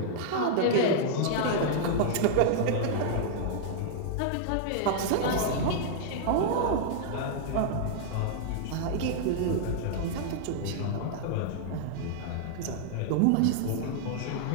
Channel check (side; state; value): both; different; correlation -0.01